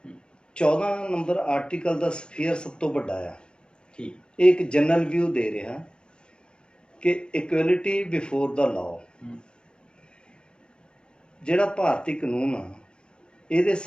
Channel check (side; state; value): right; late; 0.050 ms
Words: 14 ਨੰਬਰ ਆਰਟੀਕਲ ਦਾ ਸਫੀਅਰ ਸਭ ਤੋਂ ਵੱਡਾ ਆ। ਇਹ ਇੱਕ ਜਨਰਲ ਵਿਊ ਦੇ ਰਿਹਾ ਕਿ ਇਕੁਐਲਿਟੀ ਬਿਫੋਰ ਦਾ ਲਾਅ। ਜਿਹੜਾ ਭਾਰਤੀ ਕਾਨੂੰਨ ਆ, ਇਹਦੇ